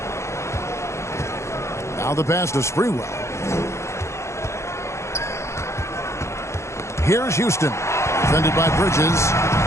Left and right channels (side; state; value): right; late; 0.14 ms